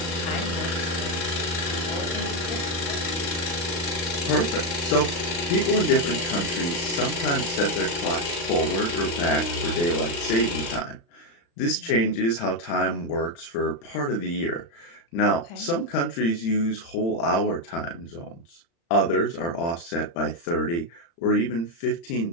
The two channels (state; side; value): late; right; 35 ms